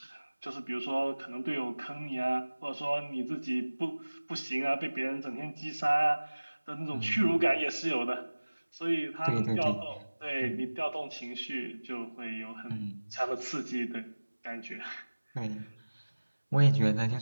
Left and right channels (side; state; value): both; inverted; correlation -1.00